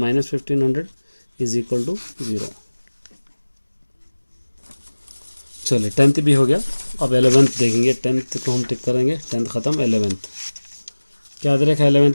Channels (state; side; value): inverted; both; correlation -1.00